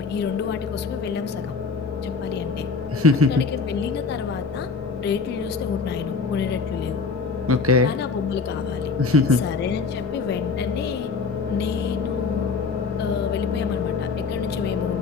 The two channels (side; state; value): right; quieter; 4.8 dB